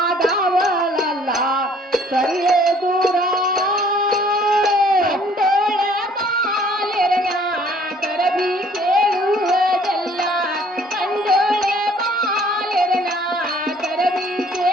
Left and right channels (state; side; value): normal; both; correlation 0.57